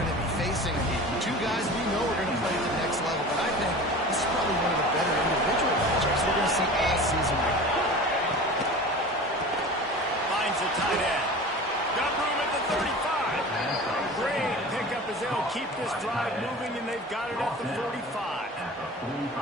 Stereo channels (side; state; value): both; normal; correlation 0.36